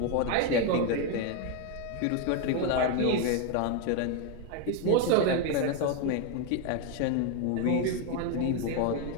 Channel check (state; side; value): different; both; correlation 0.01